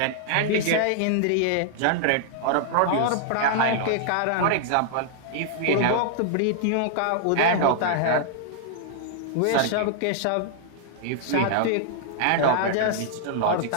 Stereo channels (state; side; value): different; both; correlation -0.01